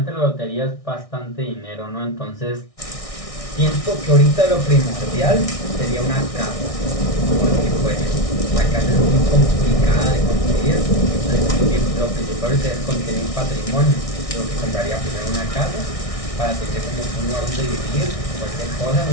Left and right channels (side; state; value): right; late; 1.6 ms